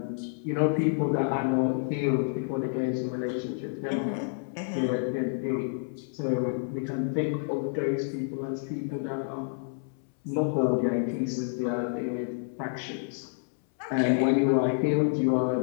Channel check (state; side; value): silent; right; 59 dB below the other